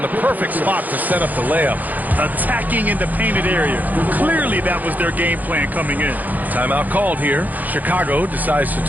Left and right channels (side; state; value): left; late; 0.082 ms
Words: the perfect spot to set up the layup. Attacking in the painted area. Clearly that was their game plan coming in. Timeout called here. Chicago decides to